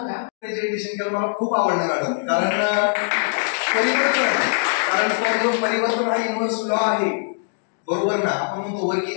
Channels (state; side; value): silent; right; digital silence